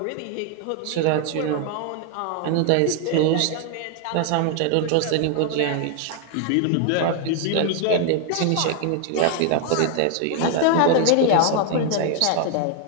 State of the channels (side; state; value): both; different; correlation 0.01